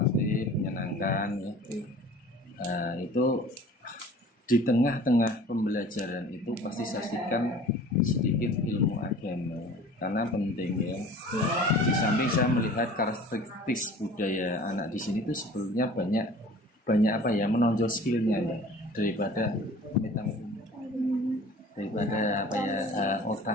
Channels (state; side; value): normal; both; correlation 0.45